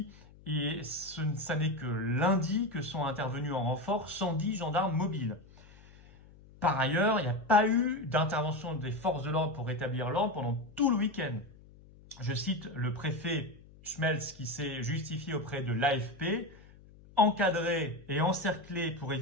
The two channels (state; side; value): noise; left; hum, 23 dB below the sound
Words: et ça n'est que lundi que sont intervenus en renfort 110 gendarmes mobiles. Par ailleurs, il n'y a pas eu d'intervention des forces de l'ordre pour rétablir l'ordre pendant tout le week-end. Je cite le préfet Schmelz qui s'est justifié auprès de l'AFP, encadré et encerclé pour